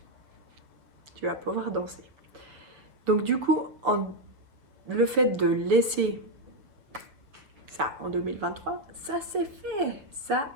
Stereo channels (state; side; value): late; left; 7.1 ms